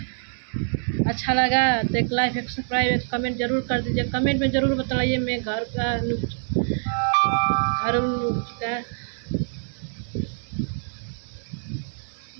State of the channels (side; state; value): left; silent; digital silence